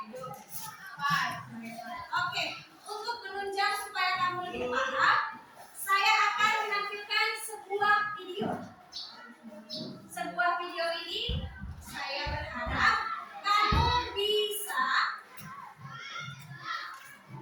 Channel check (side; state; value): both; identical; correlation 1.00